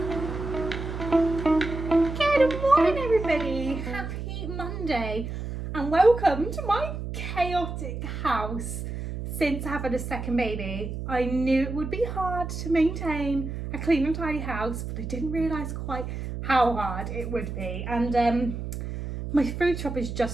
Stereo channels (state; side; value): noise; right; hum, 6 dB below the sound